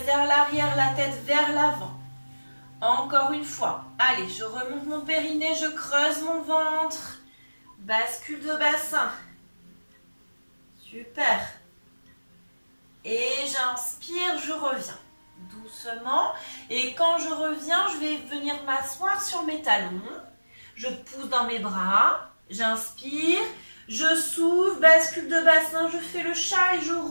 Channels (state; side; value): inverted; both; correlation -1.00